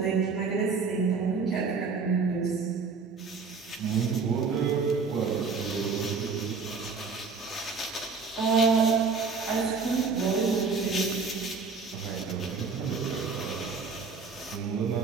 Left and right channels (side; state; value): left; quieter; 4.9 dB